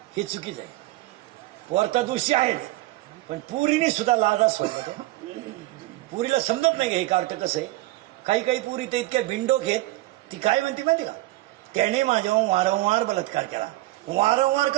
हे चुकीचं आहे. पोरता दोषी आहेच, पण पुरीने सुद्धा लाजा सोडला. पुरीला समजत नाही हे कार्ट कसं आहे. काही पुरी ते इतक्या भिंडोक आहेत. ती काय म्हणते माहिती का? त्याने माझ्यावर वारंवार बलात्कार केला. वारंवार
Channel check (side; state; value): left; quieter; 18.5 dB